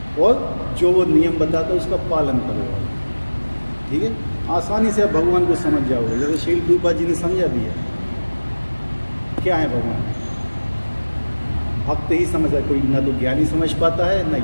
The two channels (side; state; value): both; inverted; correlation -1.00